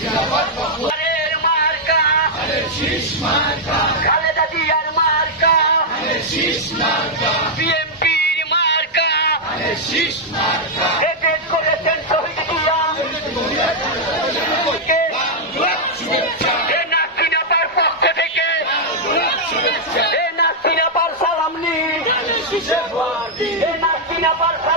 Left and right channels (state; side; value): normal; both; correlation -0.04